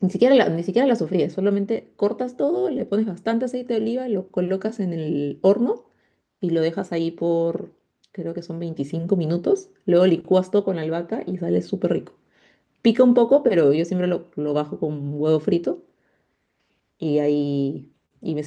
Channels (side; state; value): both; identical; correlation 1.00